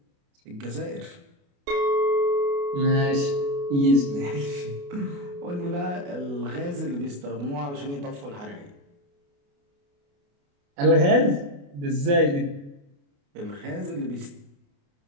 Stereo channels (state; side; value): late; left; 28 ms